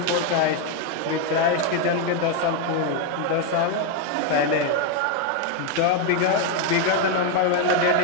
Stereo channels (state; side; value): different; both; correlation 0.01